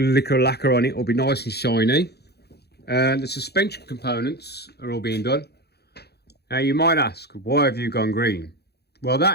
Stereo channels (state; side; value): late; right; 0.48 ms